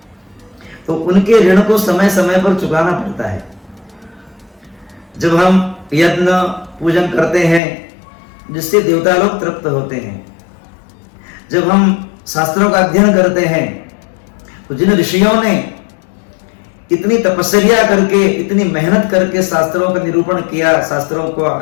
तो उनके ऋण को समय समय पर चुकाना पड़ता है। जब हम यज्ञ पूजन करते हैं जिससे देवता लोग तृप्त होते हैं, जब हम शास्त्रों का अध्ययन करते हैं, तो जिन ऋषियों ने इतनी तपस्या करके, इतनी मेहनत करके शास्त्रों का निरूपण किया, शास्त्रों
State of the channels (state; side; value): drops out; right; at 7.6 s